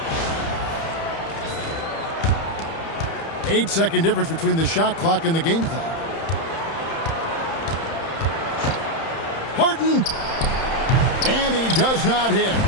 Eight-second difference between the shot clock and the game clock. Harden. And he does not hit.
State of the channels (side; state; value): right; late; 31 ms